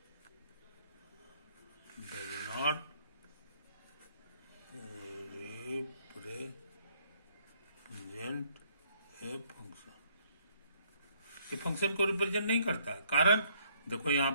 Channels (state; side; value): inverted; both; correlation -0.66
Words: does not represent a function. ये फंक्शन को रिप्रेजेंट नहीं करता। कारण देखो यहां